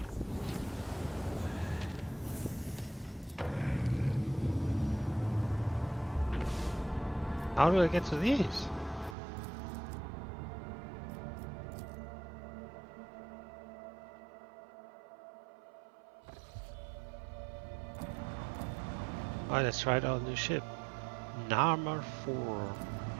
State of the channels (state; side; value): drops out; left; at 9.2 s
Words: How do I get to these? Alright, let's try out our new ship. Narmer 4.